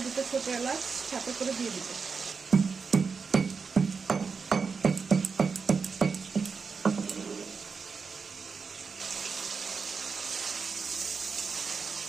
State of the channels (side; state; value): left; quieter; 5.2 dB